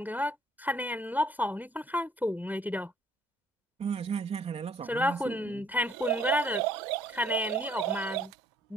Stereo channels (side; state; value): both; normal; correlation 0.63